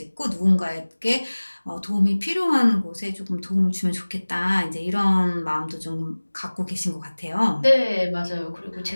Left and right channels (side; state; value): both; inverted; correlation -1.00